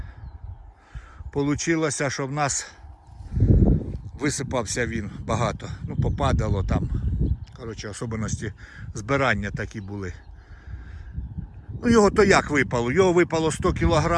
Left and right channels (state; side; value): identical; both; correlation 1.00